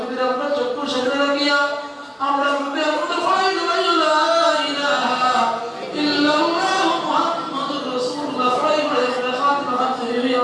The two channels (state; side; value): identical; both; correlation 1.00